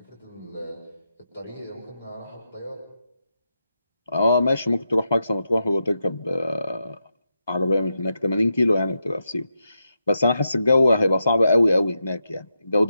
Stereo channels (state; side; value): inverted; both; correlation -0.86